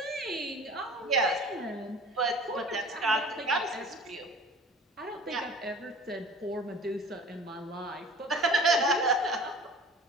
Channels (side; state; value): both; normal; correlation 0.43